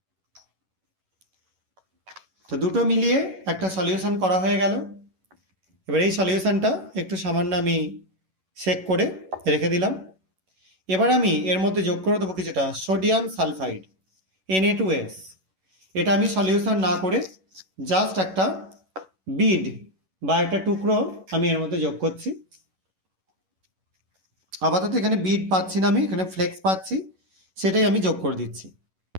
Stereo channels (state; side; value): late; left; 11 ms